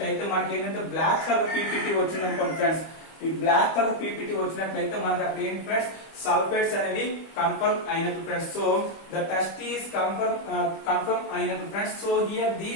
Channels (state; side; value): late; right; 25 ms